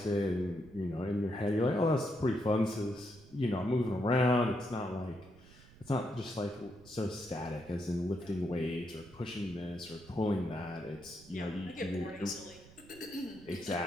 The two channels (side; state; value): right; noise; rumble, 22 dB below the sound